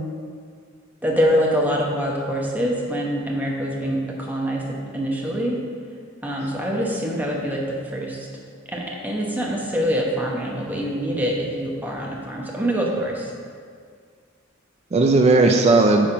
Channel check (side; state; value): both; normal; correlation 0.55